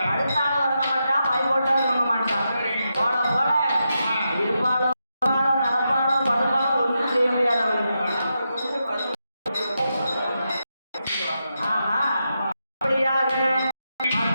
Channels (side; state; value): both; inverted; correlation -0.86